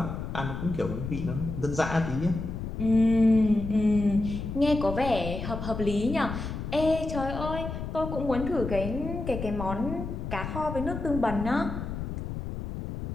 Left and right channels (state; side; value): noise; left; rumble, 6 dB below the sound